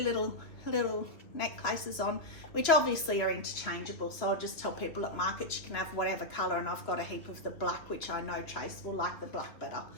necklaces on, which obviously are interchangeable, so I'll just tell people at markets you can have whatever colour, and I've got a heap of the black, which I know Trace will like the black better.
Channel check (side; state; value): right; late; 2.5 ms